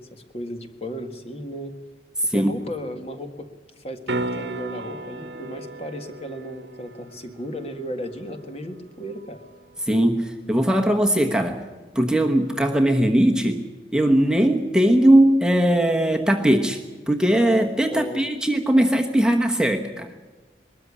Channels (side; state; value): both; normal; correlation 0.87